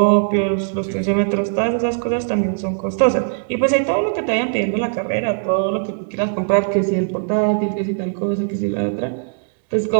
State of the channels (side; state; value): left; silent; digital silence